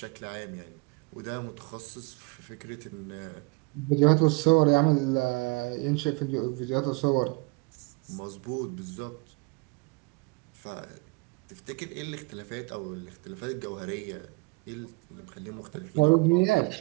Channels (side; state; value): left; quieter; 27.9 dB